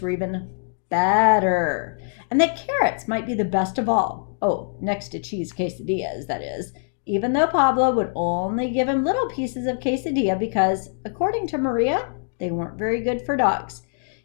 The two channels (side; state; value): right; silent; digital silence